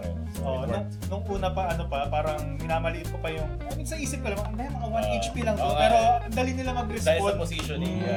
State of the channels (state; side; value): identical; both; correlation 1.00